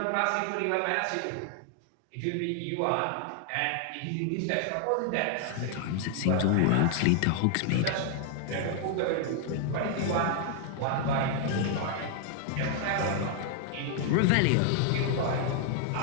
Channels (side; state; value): both; different; correlation 0.00